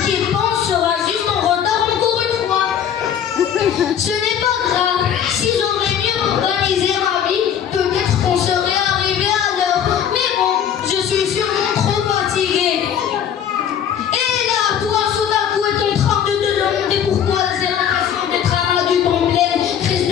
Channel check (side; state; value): right; quieter; 8.9 dB